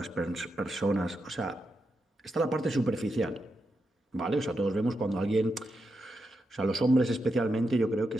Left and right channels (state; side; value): normal; both; correlation 0.86